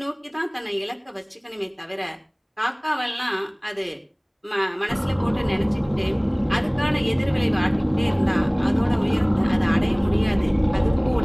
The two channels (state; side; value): identical; both; correlation 1.00